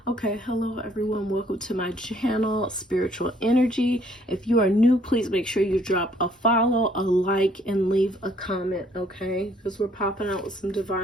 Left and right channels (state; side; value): normal; both; correlation 0.64